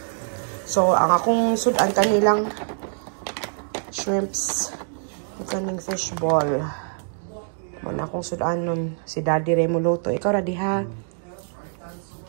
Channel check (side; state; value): left; silent; digital silence